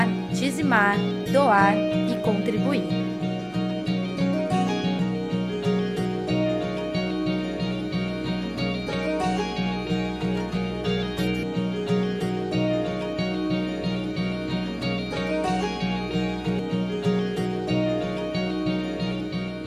dizimar, doar e contribuir.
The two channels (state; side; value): identical; both; correlation 1.00